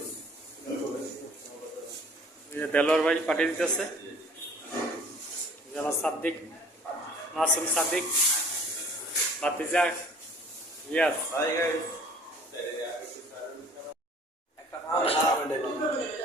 দেলোয়ার ভাই পাঠিয়ে দিতেছে, আমার সাদ্দিক, মাসুম সাদ্দিক, ভাতিজা ইয়াস।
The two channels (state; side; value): normal; both; correlation 0.51